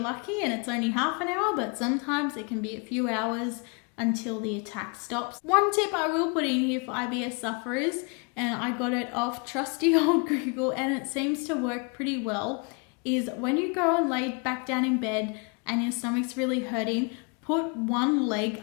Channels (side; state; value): right; quieter; 33.4 dB